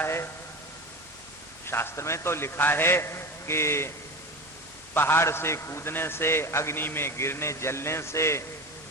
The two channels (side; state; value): both; normal; correlation 0.27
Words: है। शास्त्र में तो लिखा है कि पहाड़ से कूदने से, अग्नि में गिरने जलने से,